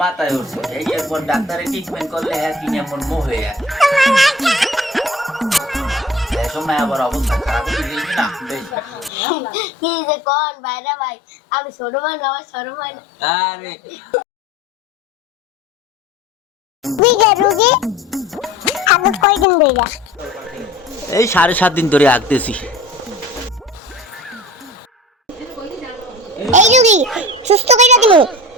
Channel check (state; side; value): normal; both; correlation 0.41